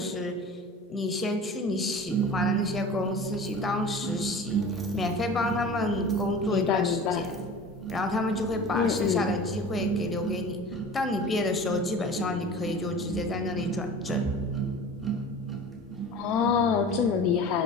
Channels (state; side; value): normal; both; correlation 0.38